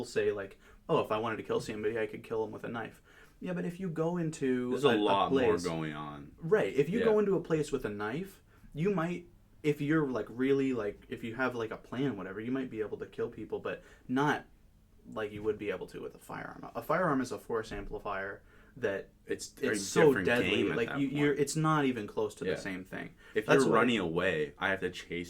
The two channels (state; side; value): identical; both; correlation 1.00